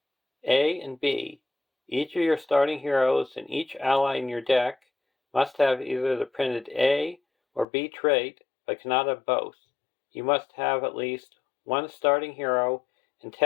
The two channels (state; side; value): drops out; right; at 7.7 s